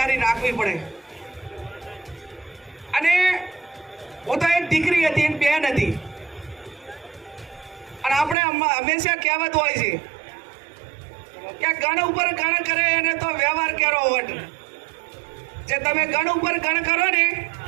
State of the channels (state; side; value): drops out; left; at 8.3 s